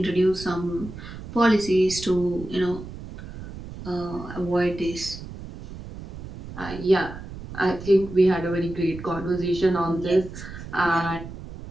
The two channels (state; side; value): noise; right; rumble, 12 dB below the sound